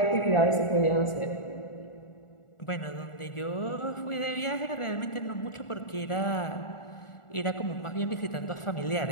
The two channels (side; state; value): right; late; 1.4 ms